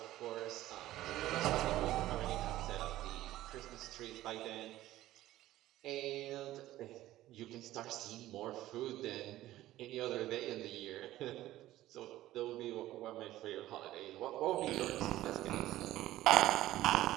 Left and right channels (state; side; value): quieter; left; 15.0 dB